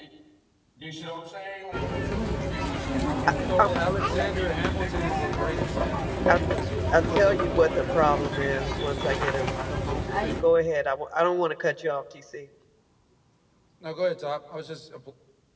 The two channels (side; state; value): both; identical; correlation 1.00